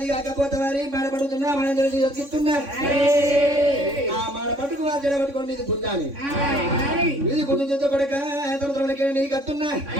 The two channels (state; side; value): late; left; 3.6 ms